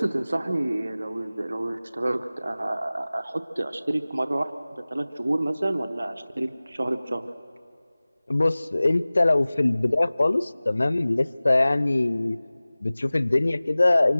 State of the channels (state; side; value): inverted; both; correlation -0.98